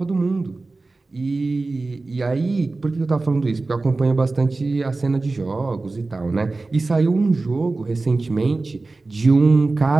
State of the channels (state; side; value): quieter; left; 3.4 dB